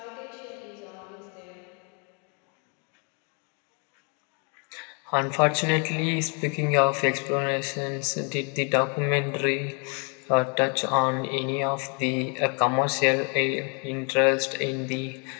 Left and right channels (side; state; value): right; quieter; 36.1 dB